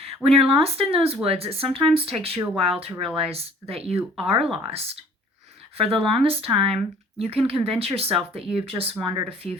When you're lost in those woods, it sometimes takes you a while to realize that you are lost. For the longest time, you can convince yourself that you've just wandered a few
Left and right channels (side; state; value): both; normal; correlation 0.53